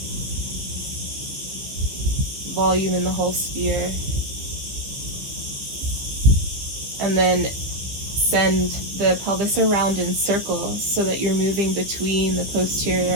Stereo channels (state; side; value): late; left; 15 ms